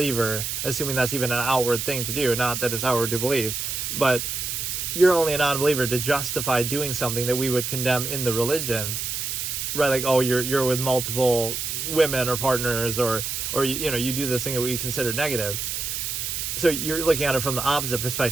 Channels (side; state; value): right; noise; hiss, 3 dB below the sound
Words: assuming that's even an outward thing to do, not that it's outward to believe, but you're only a non-believer to justify doing something that we would condemn in the religion. Right, like, you're with multiple women or partners, or you do this thing that we consider negative. So you're looking at it from the opposite